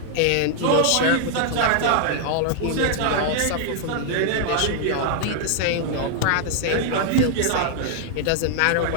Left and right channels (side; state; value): both; different; correlation 0.00